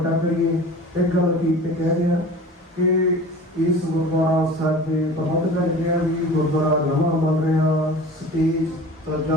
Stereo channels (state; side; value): normal; both; correlation 0.40